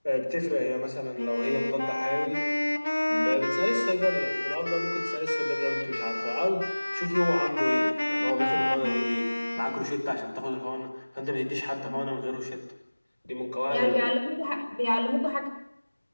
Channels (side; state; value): both; inverted; correlation -1.00